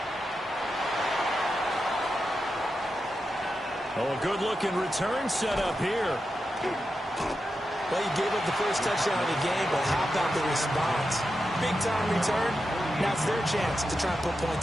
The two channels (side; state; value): both; normal; correlation 0.89